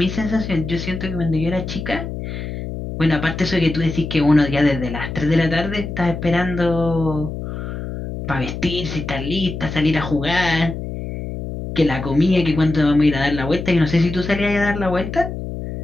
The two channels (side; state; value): left; noise; hum, 7 dB below the sound